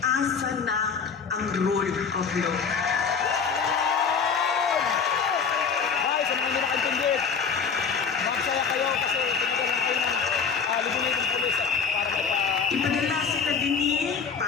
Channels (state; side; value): quieter; right; 6.0 dB